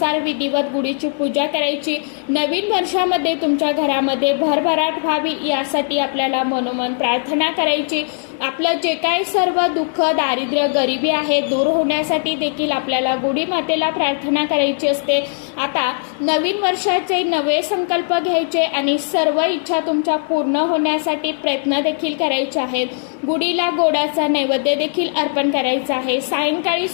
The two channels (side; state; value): right; silent; 61 dB below the other